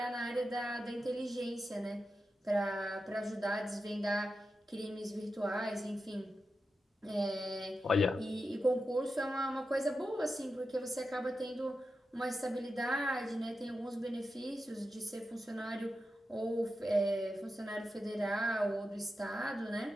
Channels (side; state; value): both; normal; correlation 0.90